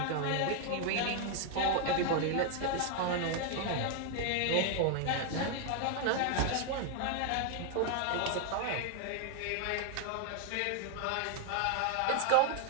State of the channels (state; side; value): different; both; correlation 0.00